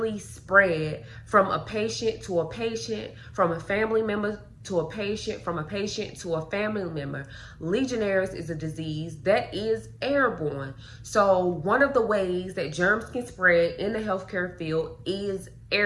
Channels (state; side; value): identical; both; correlation 1.00